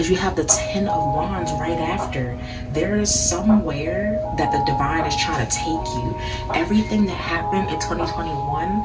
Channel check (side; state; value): both; identical; correlation 1.00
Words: you have the 10 of wands right after. There is somewhere that the divine is trying to take you. Everything that happened in 2021